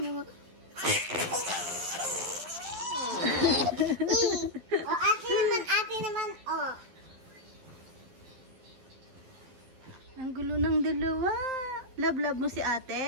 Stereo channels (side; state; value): left; late; 12 ms